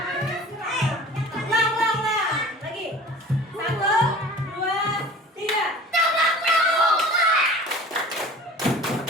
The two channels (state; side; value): normal; both; correlation 0.42